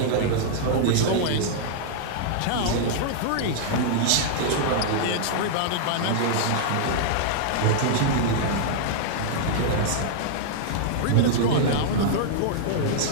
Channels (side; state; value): both; different; correlation -0.01